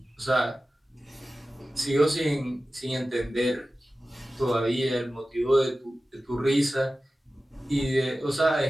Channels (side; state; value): both; normal; correlation 0.95